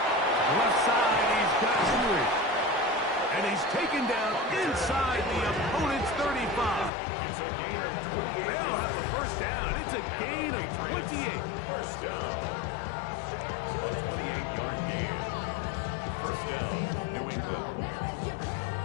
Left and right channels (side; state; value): right; drops out; at 6.9 s